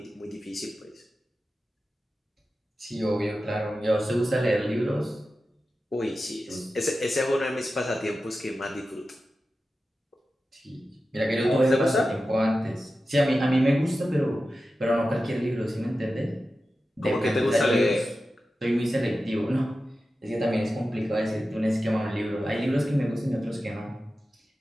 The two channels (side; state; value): both; normal; correlation 0.93